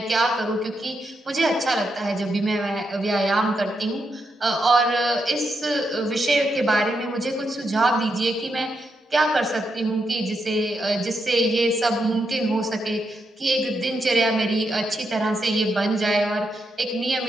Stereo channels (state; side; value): normal; both; correlation 0.83